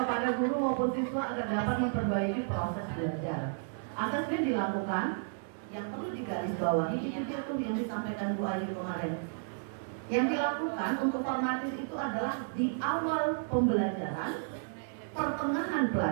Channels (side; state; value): left; silent; digital silence